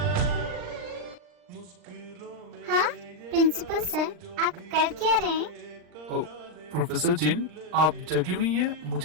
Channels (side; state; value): left; late; 39 ms